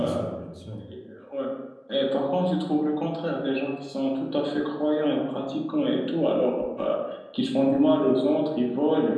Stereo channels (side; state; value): both; identical; correlation 1.00